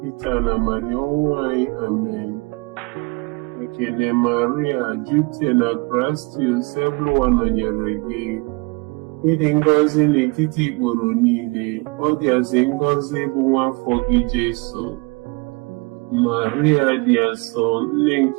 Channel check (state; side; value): quieter; left; 28.1 dB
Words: kịta na mmanya ọnwụ anyị. Amen. Ekele Maria, jupụtara na Kraịst, ebe ụwa nọnyere gị. Ịdị ngọzi n'etiti ikporo niile, ọ dịazị ngọzi bụ nwa afọ gị Jesu. Maria dị asọ, nne